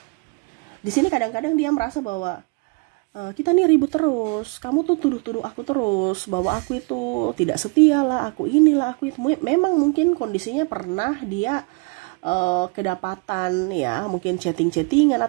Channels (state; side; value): quieter; left; 31.6 dB